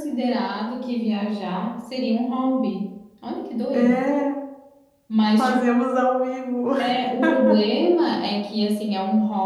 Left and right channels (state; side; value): identical; both; correlation 1.00